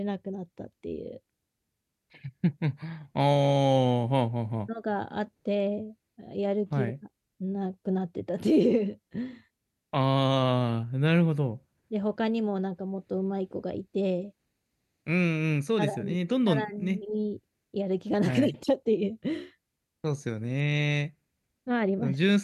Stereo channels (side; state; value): both; identical; correlation 1.00